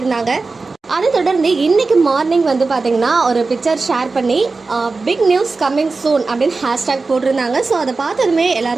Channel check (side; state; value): left; quieter; 3.9 dB